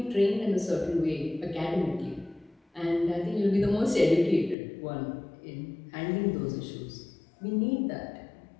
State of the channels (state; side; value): drops out; right; at 4.5 s